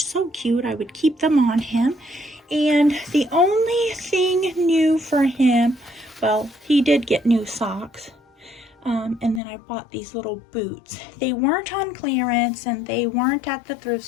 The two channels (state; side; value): drops out; right; at 9.4 s